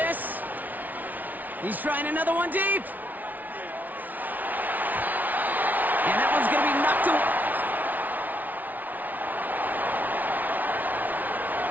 He's trying another one deep. And that one's going to be knocked away.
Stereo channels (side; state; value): left; late; 0.079 ms